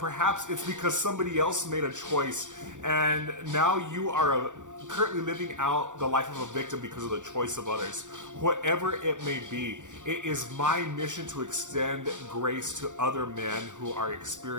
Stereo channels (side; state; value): left; late; 0.86 ms